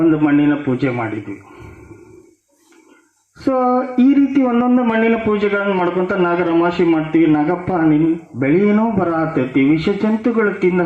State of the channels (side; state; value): both; identical; correlation 1.00